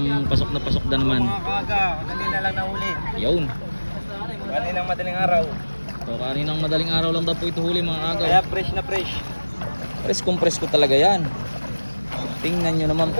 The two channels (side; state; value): both; inverted; correlation -1.00